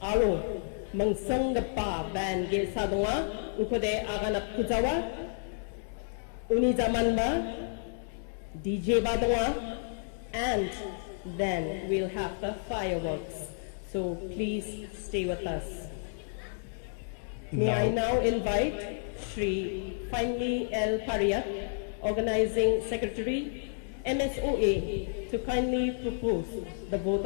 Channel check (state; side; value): silent; right; digital silence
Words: Aro, Mangsangapa Band Ge Sadunga, Ukode Aganat Kujawa, uni zamanba, DJ Badunga, and then we'll have the fireworks. So please stay with us. May I now invite Shri Finely L. Pariat, Organizing Secretary, MSOA, to kindly propose the vote